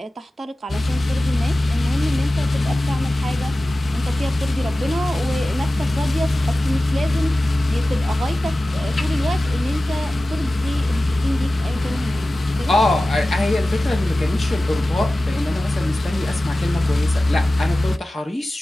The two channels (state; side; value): normal; both; correlation 0.96